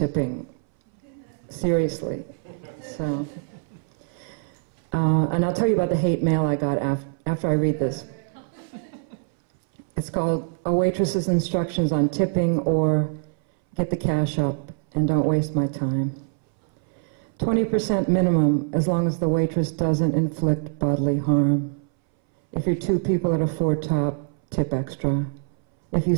Seriously. So, and I'll tell you about the hate mail I got after I read this. It's called A Waitress's Instructions on Tipping, or Get the Cash Up and Don't Waste My Time. 20% minimum as long as the waitress doesn't inflict bodily harm. If you're two people at a four-top, tip extra. If you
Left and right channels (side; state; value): left; silent; 61 dB below the other